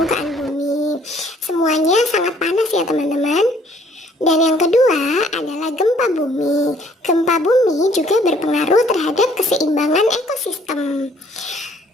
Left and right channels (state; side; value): normal; both; correlation 0.61